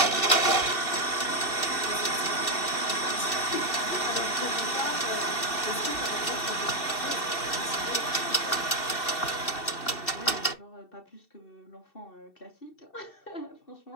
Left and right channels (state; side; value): late; right; 2.7 ms